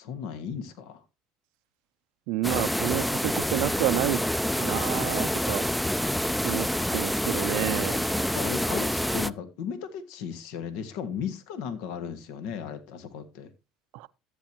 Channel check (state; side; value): normal; both; correlation 0.70